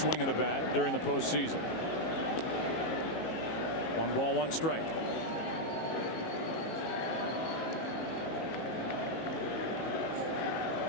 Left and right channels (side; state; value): right; late; 19 ms